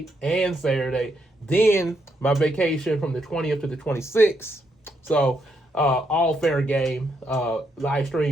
and Saturday. Then my vacation from the 20th to the 26th. So all fair game. Live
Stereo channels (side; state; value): both; normal; correlation 0.78